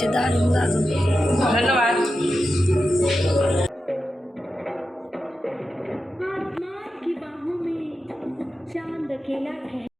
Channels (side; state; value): both; normal; correlation 0.91